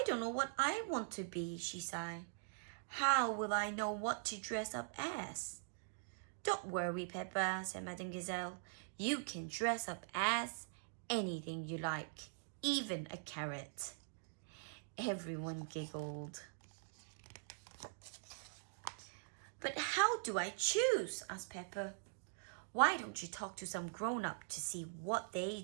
don't know what I want to be, she sighed. How will I know what to dress up as? Don't worry, Peppa, said Madame Gazelle. You can dress up as anything you like, even a carrot. Everyone giggled. But how do I choose? Asked Peppa. Why don't you talk to some grown-up to see what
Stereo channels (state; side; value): silent; left; digital silence